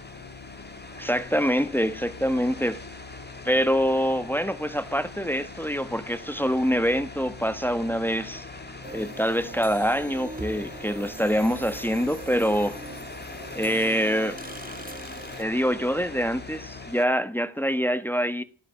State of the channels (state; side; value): normal; both; correlation 0.79